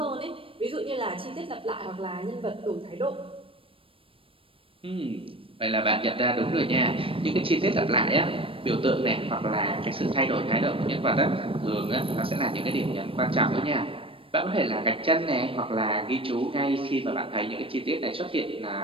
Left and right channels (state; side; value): late; left; 0.26 ms